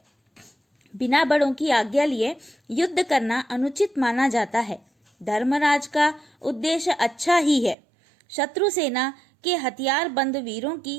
बिना बड़ों की आज्ञा लिए युद्ध करना अनुचित माना जाता है। धर्मराज का उद्देश्य अच्छा ही है। शत्रु सेना के हथियार बंद वीरों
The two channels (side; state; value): left; drops out; at 7.8 s